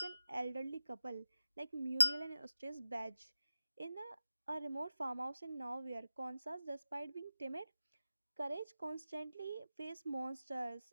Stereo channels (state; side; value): inverted; both; correlation -0.95